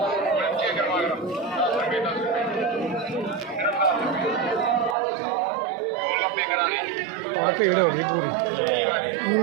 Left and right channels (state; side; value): drops out; left; at 5.0 s